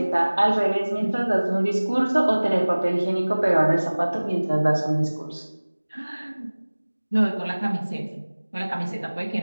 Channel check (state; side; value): inverted; both; correlation -1.00